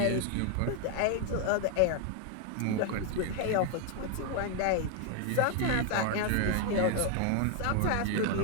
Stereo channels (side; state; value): both; different; correlation 0.00